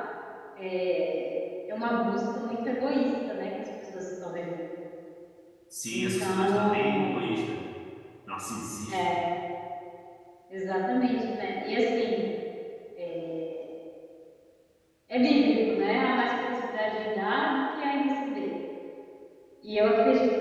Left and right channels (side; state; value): both; identical; correlation 1.00